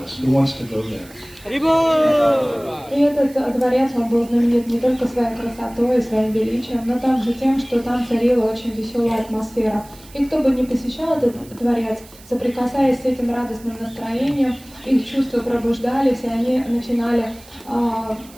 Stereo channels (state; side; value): noise; right; hiss, 23 dB below the sound